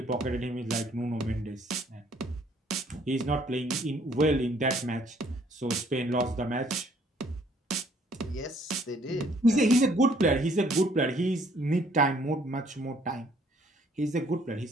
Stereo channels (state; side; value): normal; both; correlation 0.62